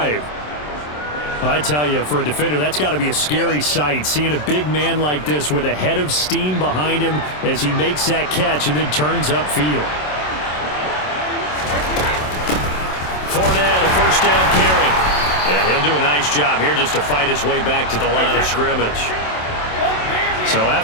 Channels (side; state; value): right; late; 27 ms